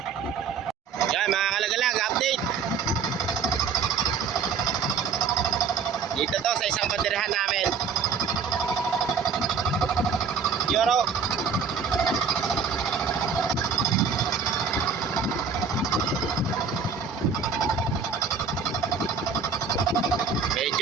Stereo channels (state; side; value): quieter; left; 5.8 dB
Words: Yan mga kalagalag, update. Dito to sa isang banderahan namin. Yoro.